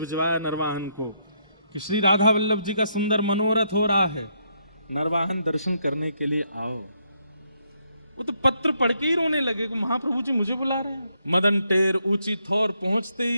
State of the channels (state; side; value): inverted; both; correlation -0.75